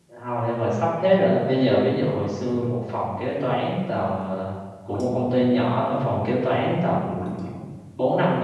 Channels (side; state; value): both; identical; correlation 1.00